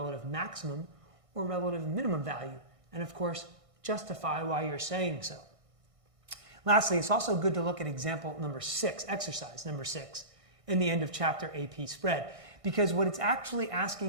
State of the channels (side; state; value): left; late; 1.6 ms